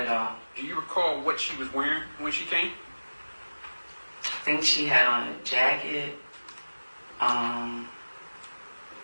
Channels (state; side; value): inverted; both; correlation -1.00